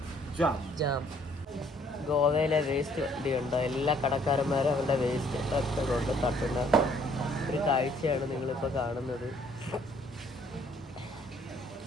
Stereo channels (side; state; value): both; normal; correlation 0.62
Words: ജാം. ഗോവയിലെ വേസ്റ്റ് വണ്ടിയുണ്ടോ? എല്ലാ കടക്കാരന്മാരും അവരുടെ വേസ്റ്റ് ഒക്കെ കൊണ്ട് തട്ടുന്ന ഒരു കാഴ്ചയാണ് നിങ്ങളിപ്പോൾ കാണുന്നത്.